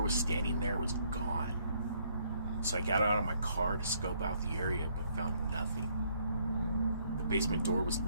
was standing there was gone. So I got out of my car to scope out the area but found nothing. The basement door was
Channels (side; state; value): both; inverted; correlation -0.68